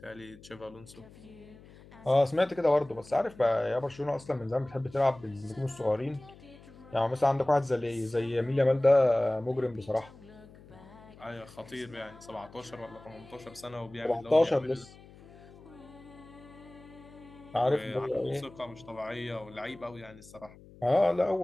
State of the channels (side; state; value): left; noise; hum, 21 dB below the sound